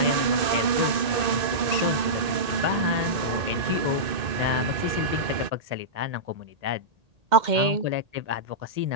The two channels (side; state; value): left; late; 2.5 ms